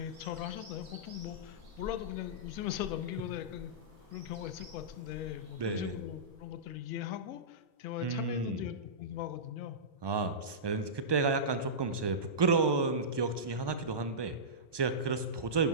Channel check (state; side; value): late; left; 1.2 ms